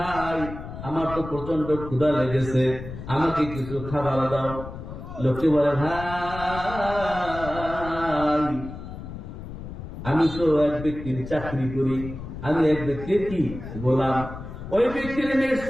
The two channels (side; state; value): left; noise; rumble, 10 dB below the sound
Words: আমার তো প্রচন্ড ক্ষুধা লেগেছে, আমাকে কিছু খাবার দাও। লোকটি বলে, ভাই আমি তো এক ব্যক্তির চাকরি করি, আমি এক ব্যক্তির কি গোলাম, ওই ব্যক্তির মেষ